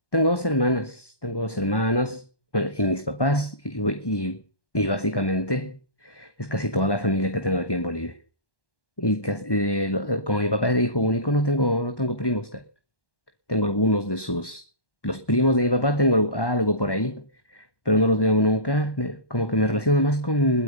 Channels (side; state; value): right; late; 1.1 ms